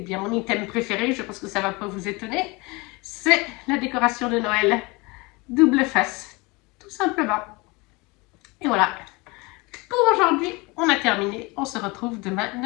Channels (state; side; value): quieter; right; 25.5 dB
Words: bien mon item préféré, je pense que ça ne va pas vous étonner, c'est la décoration de Noël double face, tout simplement. Et voilà, pour aujourd'hui, on terminé. On se retrouve demain